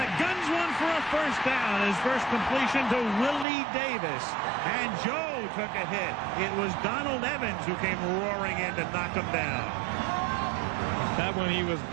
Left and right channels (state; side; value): drops out; left; at 3.5 s